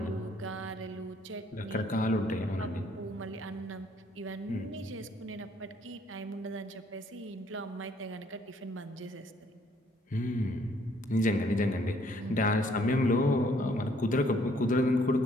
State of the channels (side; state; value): both; normal; correlation 0.64